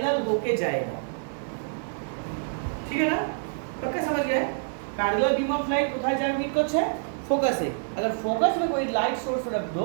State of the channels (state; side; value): silent; left; digital silence